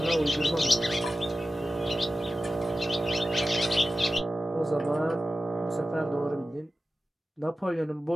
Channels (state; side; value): normal; both; correlation 0.93